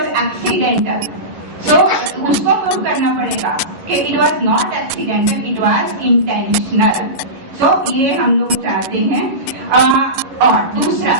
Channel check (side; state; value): left; late; 11 ms